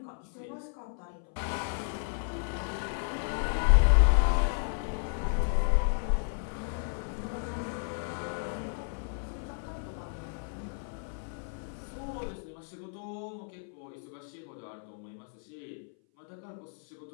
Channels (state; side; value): silent; right; 56 dB below the other